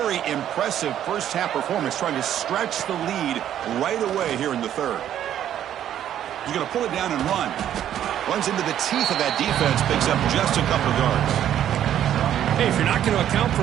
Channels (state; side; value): quieter; left; 10.8 dB